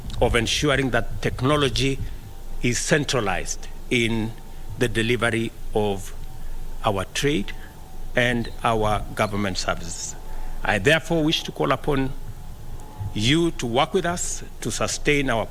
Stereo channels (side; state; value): both; identical; correlation 1.00